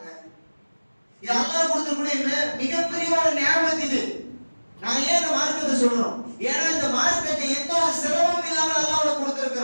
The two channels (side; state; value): both; inverted; correlation -1.00